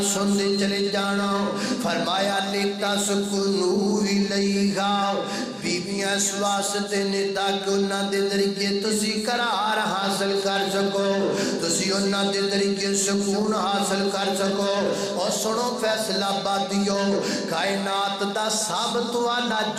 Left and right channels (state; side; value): identical; both; correlation 1.00